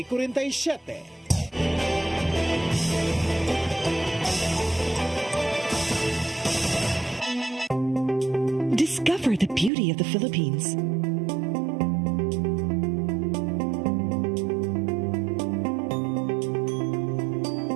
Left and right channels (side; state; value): left; drops out; at 9.7 s